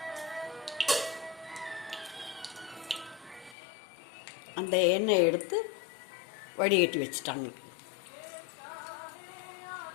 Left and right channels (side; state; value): right; drops out; at 3.6 s